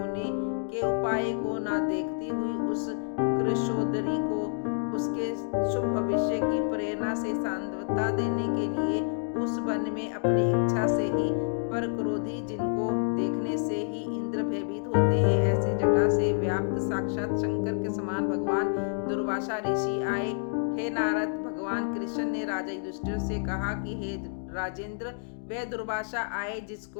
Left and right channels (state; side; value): silent; right; digital silence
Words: के उपाय को न देखती हुई उस कृशोदरी को उसके शुभ भविष्य की प्रेरणा से सांत्वना देने के लिए उस वन में अपनी इच्छा से ही पर क्रोधी, जिनको देखने से ही इंद्र भयभीत होते हैं, ऐसे जटा से व्याप्त साक्षात शंकर के समान भगवान दुर्वासा ऋषि आए। हे नारद, भगवान कृष्ण ने राजा युधिष्ठिर से कहा कि हे राजेंद्र, वह दुर्वासा आए